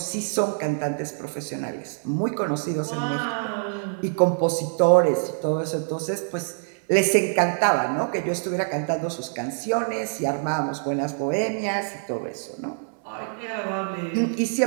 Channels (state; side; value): silent; left; digital silence